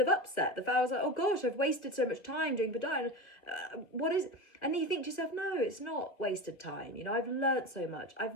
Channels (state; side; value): late; right; 2.4 ms